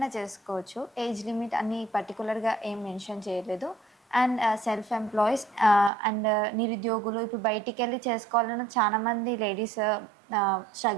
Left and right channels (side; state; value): left; drops out; at 5.9 s